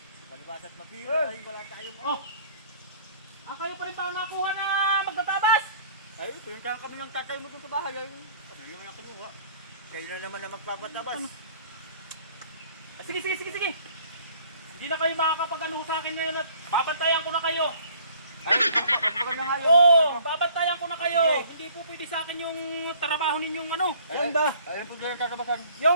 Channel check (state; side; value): inverted; both; correlation -0.55